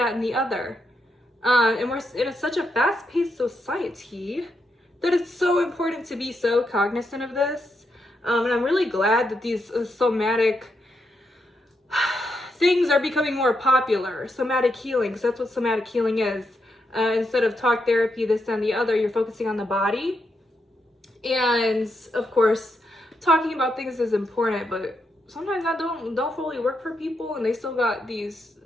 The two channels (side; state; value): both; normal; correlation 0.82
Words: and the other. And we're in such a fast-paced society that it's so important to be so cognizant of this. And I'm really glad that these somatic things are becoming more popular. Somatic healing, because that's what somatic healing is. Instead of talk therapy, this, that, and the other, you're focusing on the body. And of course, talking about things is important, but sometimes that don't fully work for people, and they still got these